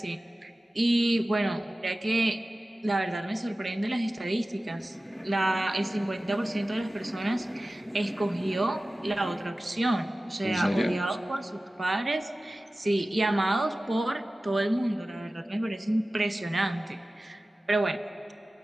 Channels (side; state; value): both; normal; correlation 0.96